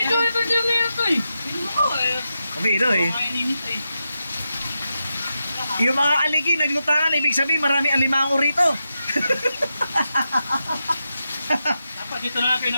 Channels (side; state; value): both; inverted; correlation -0.89